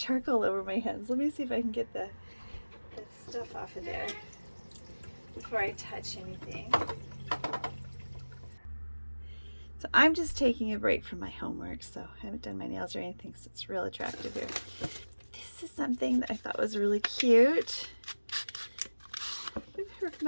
over my hands. Let me see if I can get the stuff off of there before I touch anything. So I'm just taking a break from my homework, so I haven't done my nails or anything, so it's real attractive here. This is something that I thought was really cute. With her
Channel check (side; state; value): both; inverted; correlation -1.00